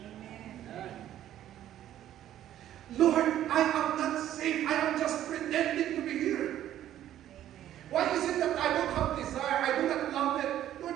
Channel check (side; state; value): left; quieter; 12.0 dB